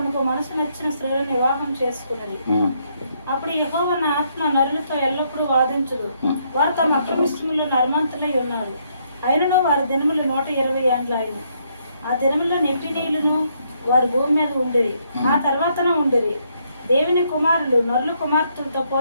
మనసు నచ్చిన స్త్రీలను వివాహం చేసుకున్నది. అప్పుడు యెహోవా నా ఆత్మ నరులతో ఎల్లప్పుడూ వాదించుడు. వారు తమ అక్రమిష్టములో నర్మంతులై ఉన్నారు. అయినను వారి దినములు 120 ఏండ్లు అయిన. ఆ దినముల్లో నెఫీలీయులను వారి భూమి మీద ఉండేవి. ఆ తర్వాతన ఉండేవి. దేవుని కుమారులు నరుల కుమార్తెలతో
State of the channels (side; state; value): both; inverted; correlation -0.73